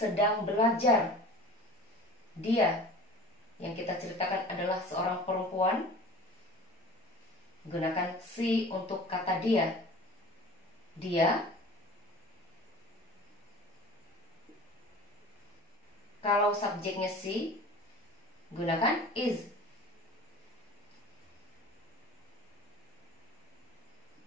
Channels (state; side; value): normal; both; correlation 0.41